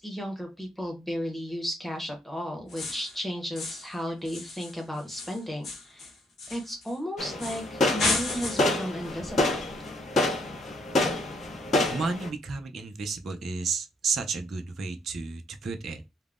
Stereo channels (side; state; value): both; normal; correlation 0.70